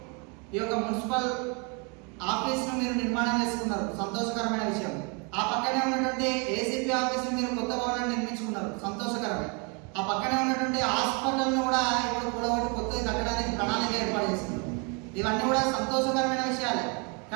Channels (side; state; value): left; quieter; 33.8 dB